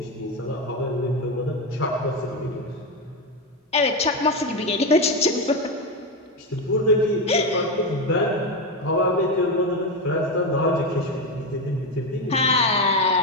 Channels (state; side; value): normal; both; correlation 0.12